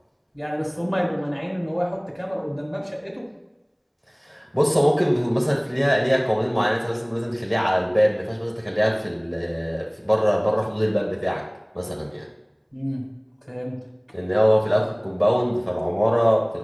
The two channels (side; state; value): both; identical; correlation 1.00